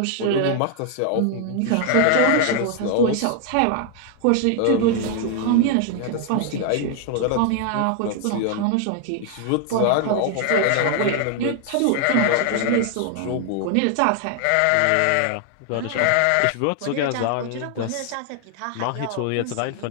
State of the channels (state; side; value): different; both; correlation 0.00